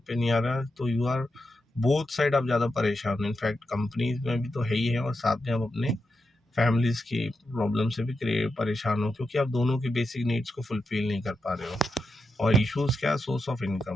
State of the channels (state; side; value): normal; both; correlation 0.87